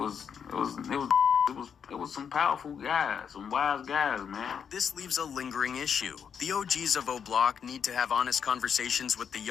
It was some powerful guys, some wise guys, man. This leaves a lingering issue. The OGs of O Block need to have honest conversations with the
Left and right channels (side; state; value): right; quieter; 7.3 dB